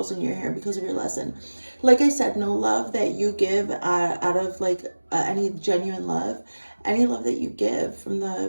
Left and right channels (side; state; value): both; inverted; correlation -1.00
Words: in your hair because of your lesson. Like I said, no love that you give out of like any genuine love. Any love that you give from